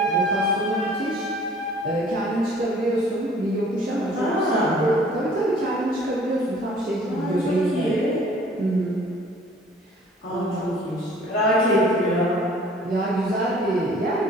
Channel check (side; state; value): both; normal; correlation 0.53